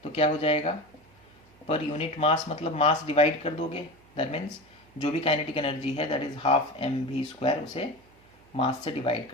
तो क्या हो जाएगा? पर यूनिट मास मतलब मास डिवाइड कर दोगे, दैट मीन्स जो भी काइनेटिक एनर्जी है दैट इज हाफ mv², उसे मास से डिवाइड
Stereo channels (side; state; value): right; noise; hum, 29 dB below the sound